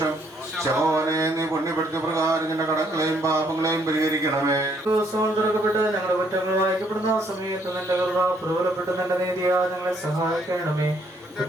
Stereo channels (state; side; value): normal; both; correlation 0.68